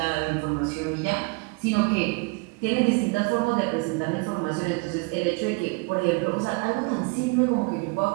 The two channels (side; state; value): left; quieter; 29.1 dB